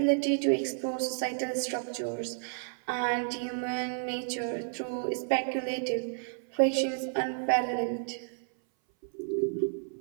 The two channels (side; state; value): left; silent; 57 dB below the other